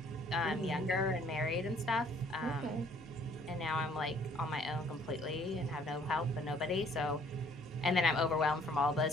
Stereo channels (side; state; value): both; normal; correlation 0.60